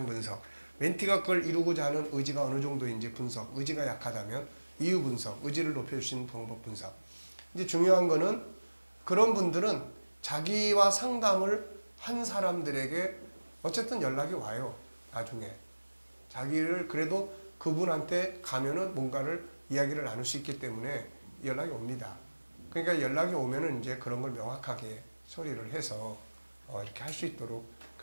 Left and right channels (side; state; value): both; inverted; correlation -1.00